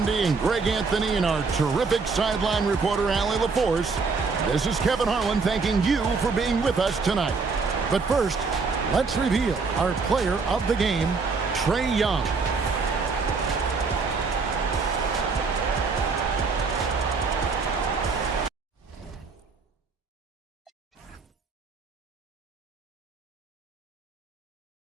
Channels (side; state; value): left; quieter; 4.6 dB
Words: and Greg Anthony and our terrific sideline reporter, Allie LaForce, this is Kevin Harlan thanking you for being with us tonight. But first, let's reveal our player of the game, Trae Young.